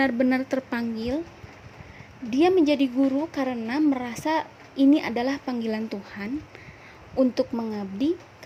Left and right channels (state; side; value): identical; both; correlation 1.00